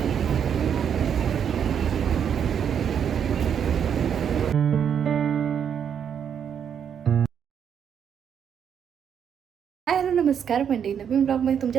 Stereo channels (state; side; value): quieter; left; 8.1 dB